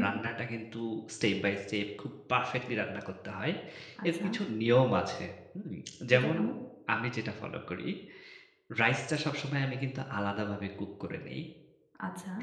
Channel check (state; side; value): identical; both; correlation 1.00